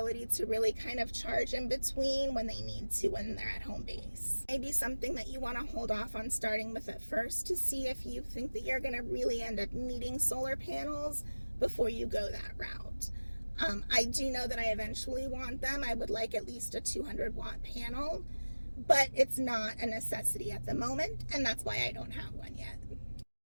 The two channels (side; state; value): both; inverted; correlation -1.00